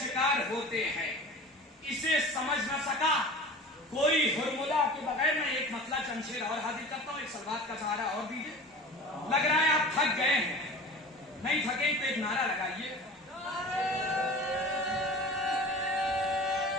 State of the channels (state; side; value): normal; both; correlation 0.37